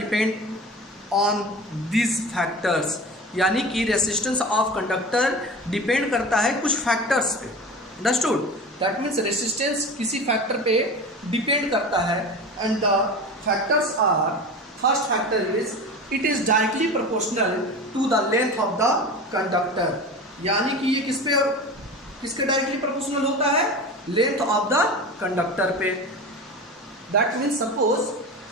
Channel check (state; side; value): normal; both; correlation 0.32